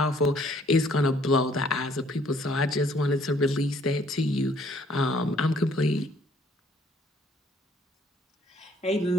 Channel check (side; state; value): both; normal; correlation 0.62